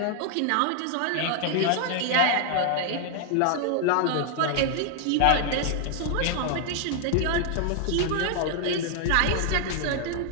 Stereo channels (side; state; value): both; different; correlation 0.00